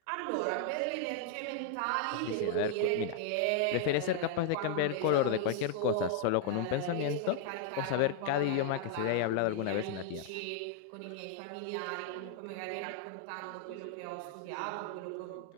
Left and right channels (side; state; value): both; different; correlation 0.00